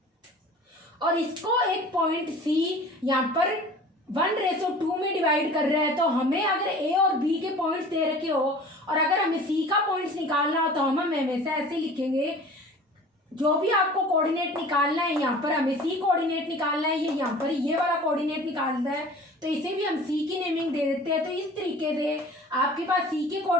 और इसको एक पॉइंट सी यहाँ पर 1:2 में डिवाइड कर रहा है, तो हमें अगर ए और बी के पॉइंट्स दे रखे हो और अगर हमें सी का पॉइंट्स निकालना हो तो हम हमेशा ऐसे लिखेंगे, जो भी आपको कोऑर्डिनेट निकालना है यहाँ पर हमें सी कोऑर्डिनेट निकालना है, ये यहाँ पर ये वाला कोऑर्डिनेट निकालना है, तो इसे भी हम सी की नेमिंग दे देते हैं। तो इस तरीके से आपके पास सी के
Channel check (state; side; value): normal; both; correlation 0.43